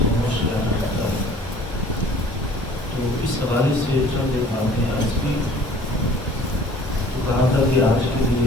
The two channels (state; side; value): normal; both; correlation 0.51